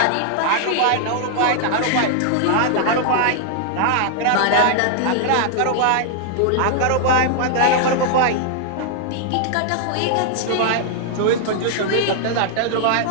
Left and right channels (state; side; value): different; both; correlation -0.01